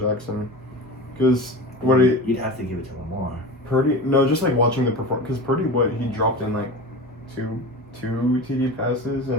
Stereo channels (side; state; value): both; normal; correlation 0.31